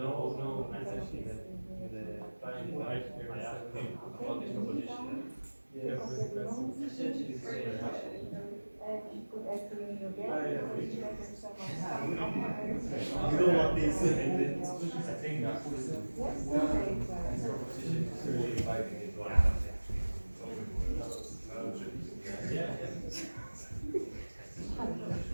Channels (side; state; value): both; inverted; correlation -1.00